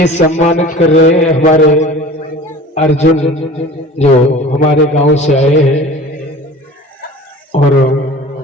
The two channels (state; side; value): normal; both; correlation 0.41